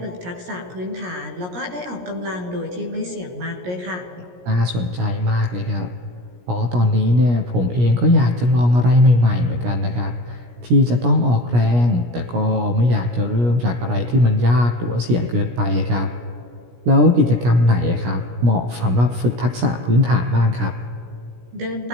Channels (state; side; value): late; left; 17 ms